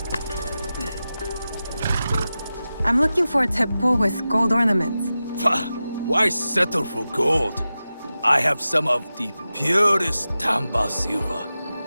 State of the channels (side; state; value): both; inverted; correlation -0.93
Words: I'm looking for a teppo with gold ornaments. Why settle for gold? I have some of the purest Tamba silver.